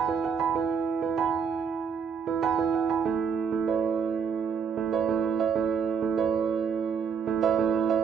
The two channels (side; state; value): left; quieter; 6.5 dB